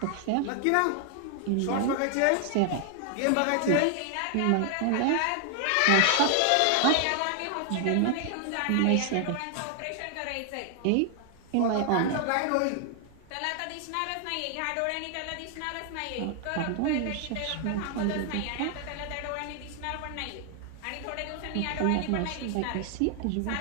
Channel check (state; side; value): different; both; correlation 0.00